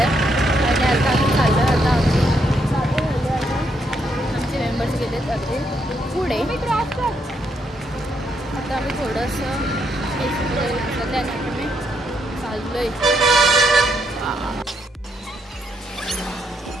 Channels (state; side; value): normal; both; correlation 0.76